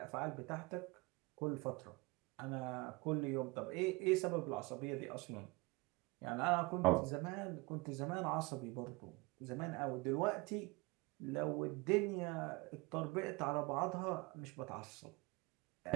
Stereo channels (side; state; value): left; quieter; 24.4 dB